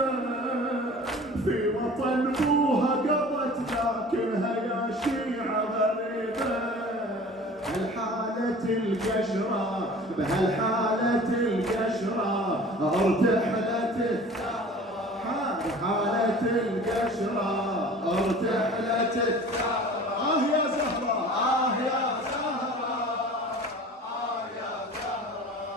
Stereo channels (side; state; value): both; normal; correlation 0.43